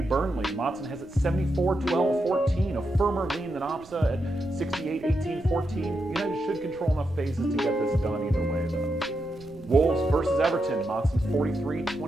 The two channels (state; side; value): noise; right; rumble, 23 dB below the sound